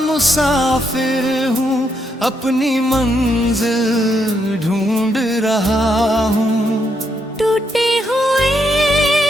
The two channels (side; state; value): both; normal; correlation 0.78